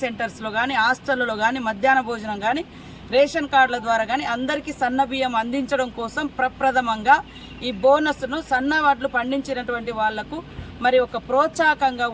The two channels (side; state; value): both; identical; correlation 1.00